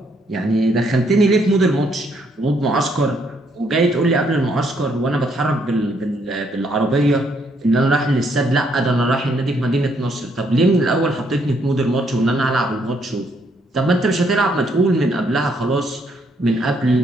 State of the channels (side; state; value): both; normal; correlation 0.71